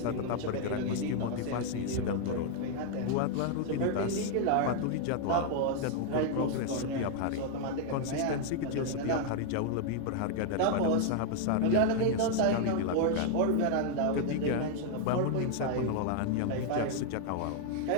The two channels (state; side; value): different; both; correlation 0.00